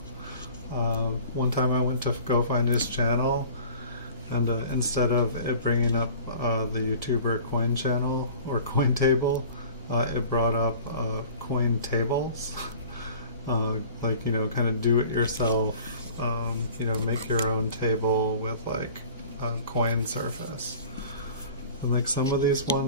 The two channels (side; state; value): both; inverted; correlation -0.45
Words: One time I went to go find his channel, and instead of it bringing up the YouTuber coin channel or coin table, it brought up coin tables. Like, you know, kind of do it yourself, you know, make your own table with like coin surface. And like some of these